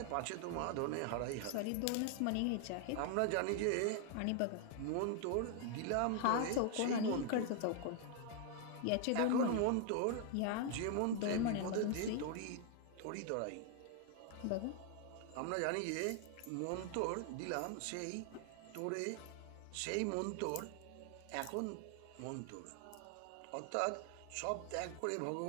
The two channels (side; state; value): both; different; correlation 0.00